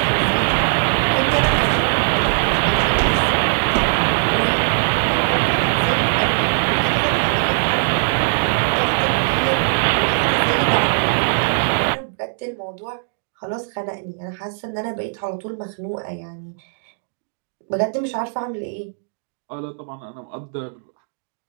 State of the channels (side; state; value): left; silent; digital silence